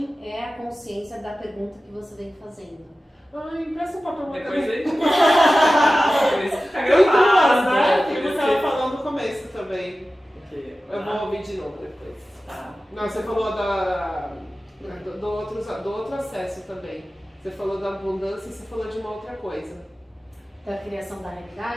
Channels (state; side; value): normal; both; correlation 0.95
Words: é a consciência da pergunta que você vem fazendo. Ai, empresta um papel Depois também. a gente por isso que fica Tem duas, gravado, né? por Que isso você estava falando no começo também. Porque, Eu vou ouvir de novo depois. tá. Não, você falou do outro acesso também. Você falou da abundância e você falou de uma outra coisa. Da criação da